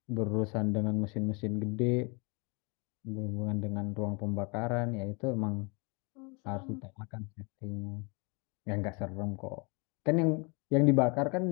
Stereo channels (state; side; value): quieter; right; 31.5 dB